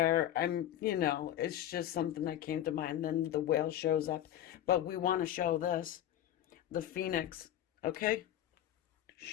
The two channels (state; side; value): quieter; right; 11.8 dB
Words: It's just something that came to mind. Then the whale shows up, but we want to show this, the phoenix. Okay,